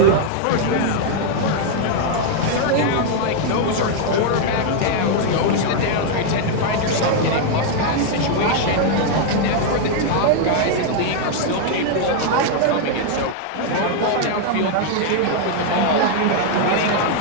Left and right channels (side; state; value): both; different; correlation 0.00